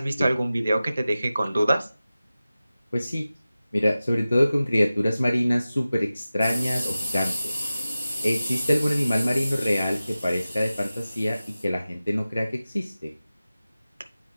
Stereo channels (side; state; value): both; inverted; correlation -0.95